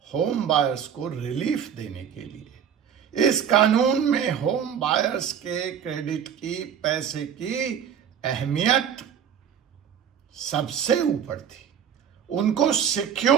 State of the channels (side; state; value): left; quieter; 8.4 dB